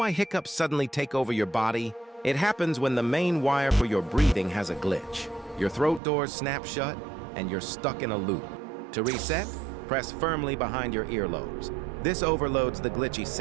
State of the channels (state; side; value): drops out; left; at 6.0 s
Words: hiccups suddenly take over your body? It happens when the main wire for your breathing has a glitch. Your throat doors snap shut, and you're stuck in a loop. To reset, press firmly behind your earlobes. This overloads the glitchy